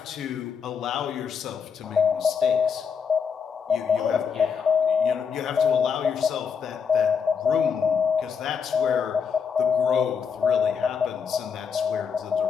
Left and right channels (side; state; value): right; quieter; 6.5 dB